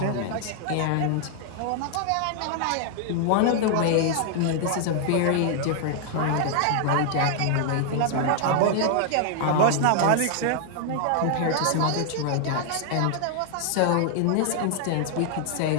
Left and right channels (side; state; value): both; different; correlation 0.00